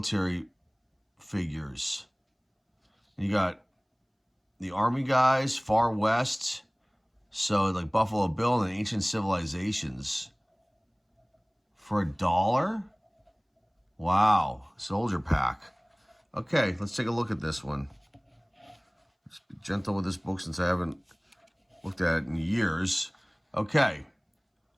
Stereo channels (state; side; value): identical; both; correlation 1.00